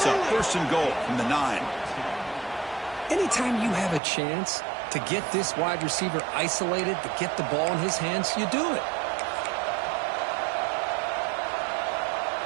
up. 1st and goal from the 9. Anytime you have a chance to get this wide receiver isolated, to get the ball in his hands, you do it.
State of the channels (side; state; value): left; drops out; at 4.0 s